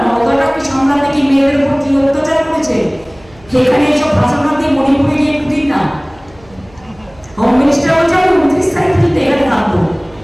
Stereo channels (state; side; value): noise; right; hum, 26 dB below the sound